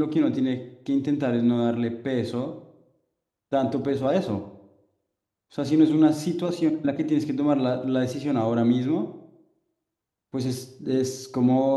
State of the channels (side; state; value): both; identical; correlation 1.00